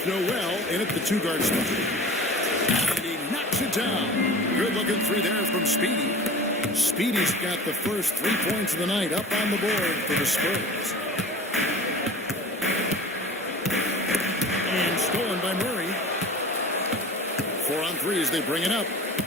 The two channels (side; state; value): both; normal; correlation 0.40